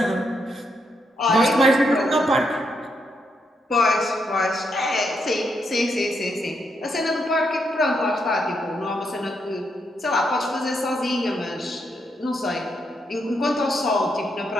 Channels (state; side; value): normal; both; correlation 0.79